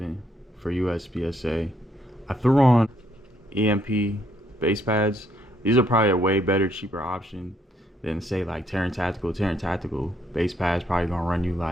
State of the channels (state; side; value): normal; both; correlation 0.71